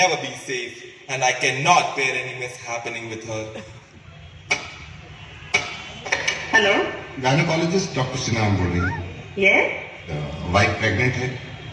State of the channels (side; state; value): both; identical; correlation 1.00